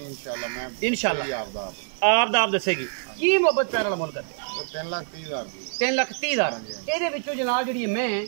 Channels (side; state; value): left; silent; digital silence